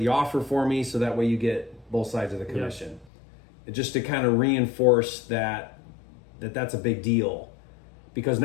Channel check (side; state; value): right; drops out; at 3.1 s